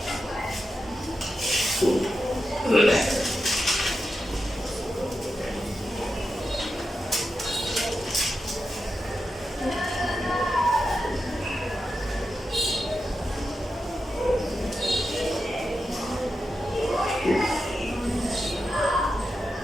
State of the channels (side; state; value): both; normal; correlation 0.89